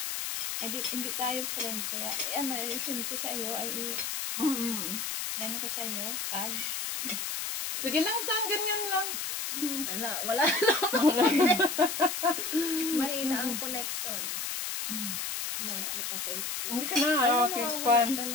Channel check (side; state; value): left; noise; hiss, 3 dB below the sound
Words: Ay, hindi tayo friend. Kaya, send ko sa iyo. Ay, yan ko sa iyo. Tag. Sige lang, Tan. Ganyan lang. Wala lang. Mahina ang connection. Kita kayo. Hindi ka na. Okay, fun.